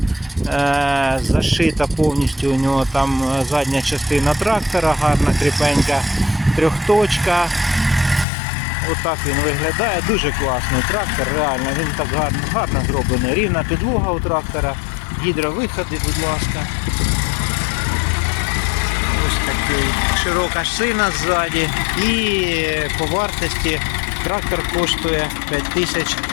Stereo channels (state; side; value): drops out; right; at 8.2 s